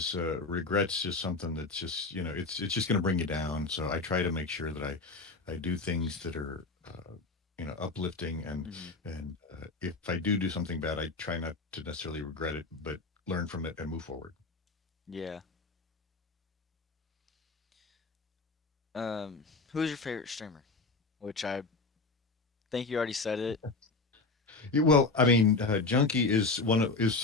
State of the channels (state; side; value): quieter; right; 3.7 dB